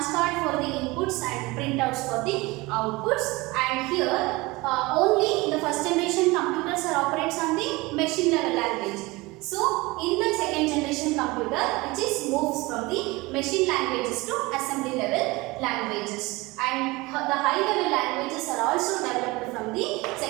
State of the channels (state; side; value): quieter; left; 22.5 dB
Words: card for the inputs and printouts for the outputs. And here only the first generation computers are operates on the machine level language. So in the second generation computer which is moves from the machine languages to assembly level languages. And the high level languages are also developed from the